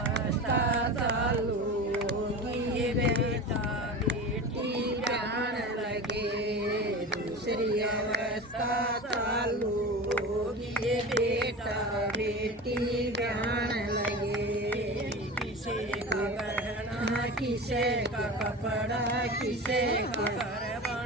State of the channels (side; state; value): both; normal; correlation 0.30